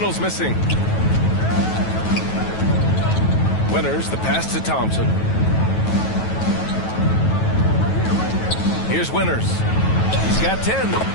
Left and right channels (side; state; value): right; late; 9.2 ms